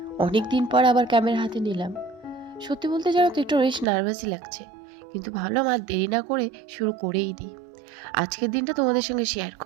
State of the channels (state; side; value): drops out; left; at 3.9 s